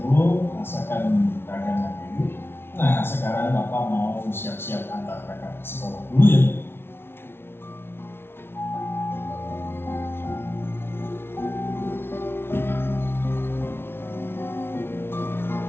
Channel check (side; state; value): right; late; 0.11 ms